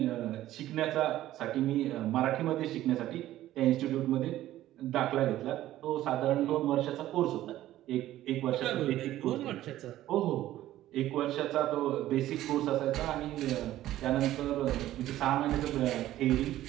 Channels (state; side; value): quieter; left; 14.1 dB